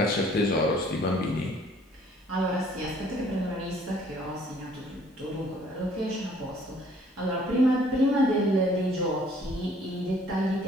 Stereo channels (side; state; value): both; normal; correlation 0.58